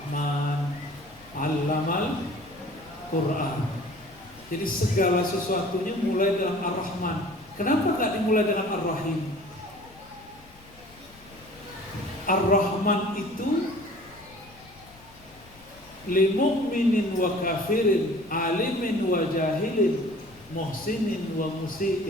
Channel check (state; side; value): noise; left; rumble, 25 dB below the sound